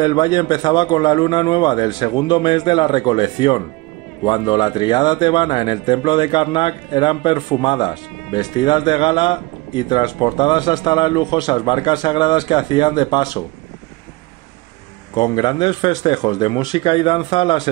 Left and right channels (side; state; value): left; quieter; 22.2 dB